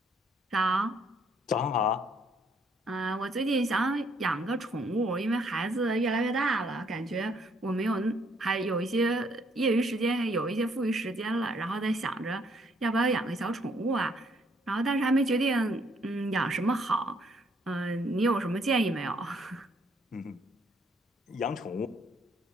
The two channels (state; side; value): normal; both; correlation 0.67